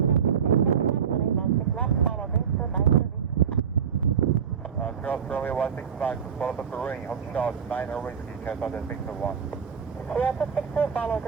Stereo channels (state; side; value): quieter; left; 7.4 dB